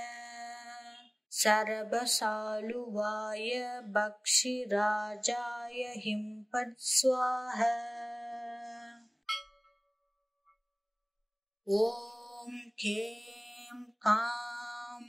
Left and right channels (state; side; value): identical; both; correlation 1.00